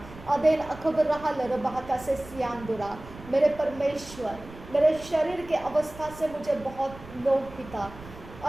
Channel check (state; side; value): noise; right; rumble, 17 dB below the sound